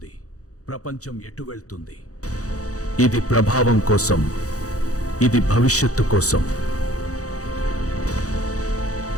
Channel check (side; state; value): right; late; 0.66 ms